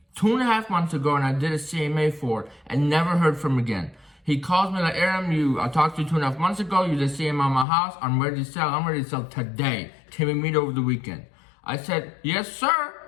2.5 months ago, and I did a CMA for, and never heard from him again. He calls me like, Aram, I talked to you 2.5 months ago. You did CMA on my house. I'm ready to sell. I'm ready to sell today. Can we meet over the weekend? I said, yes, sir.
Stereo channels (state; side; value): drops out; right; at 7.7 s